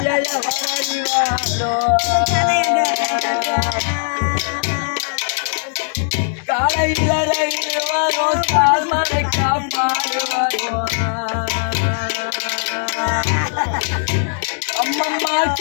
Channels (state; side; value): silent; right; digital silence